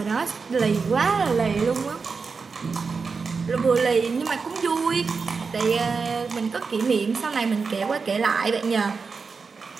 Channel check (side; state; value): left; quieter; 4.9 dB